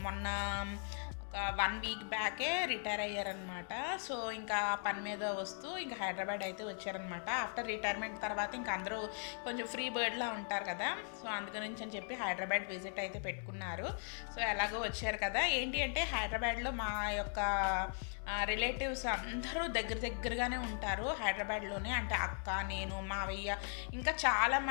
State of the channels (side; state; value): right; silent; 52 dB below the other